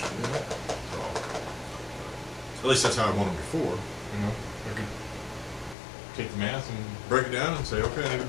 at least that's how I won them before. You know, I could take the math and break it down and say, okay, I need to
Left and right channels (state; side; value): drops out; right; at 5.8 s